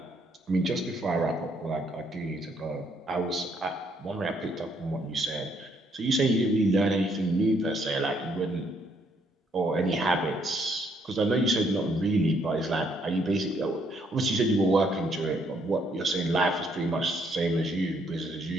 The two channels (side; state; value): both; normal; correlation 0.70